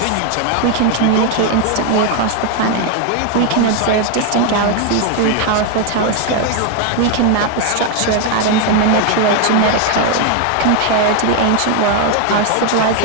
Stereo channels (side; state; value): both; different; correlation 0.01